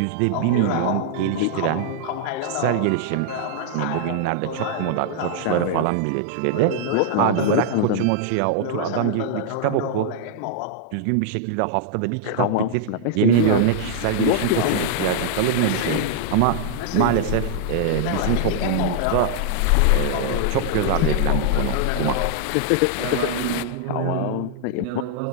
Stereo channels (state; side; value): different; both; correlation -0.01